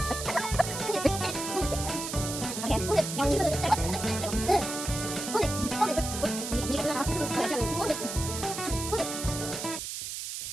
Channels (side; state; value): right; noise; hiss, 6 dB below the sound